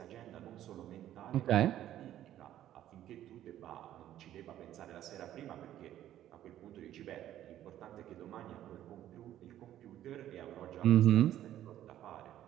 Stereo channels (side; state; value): left; quieter; 12.2 dB